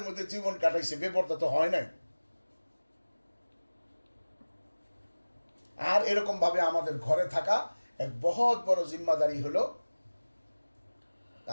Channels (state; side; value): inverted; both; correlation -1.00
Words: মধ্যে জীবন কাটাইছে, বেপর্দা তো হয় নাই। আর এরকম ভাবে আমাদের ঘরে থাকা এক বহুত বড় জিম্মাদারি হলো